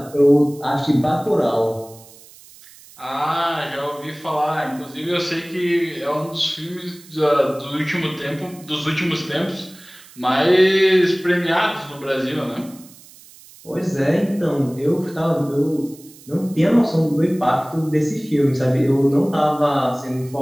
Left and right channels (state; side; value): noise; right; hiss, 22 dB below the sound